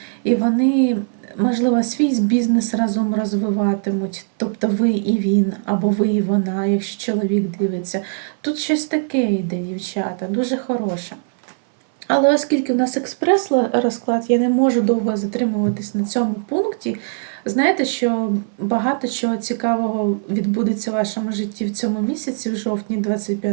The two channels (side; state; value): left; silent; 57 dB below the other